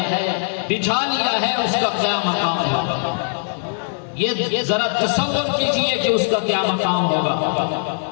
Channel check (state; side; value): silent; right; 65 dB below the other